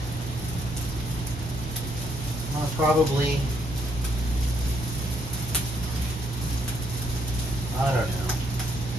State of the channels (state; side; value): normal; both; correlation 0.73